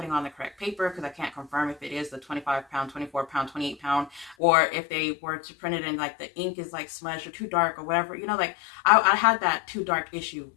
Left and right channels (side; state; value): right; drops out; at 4.4 s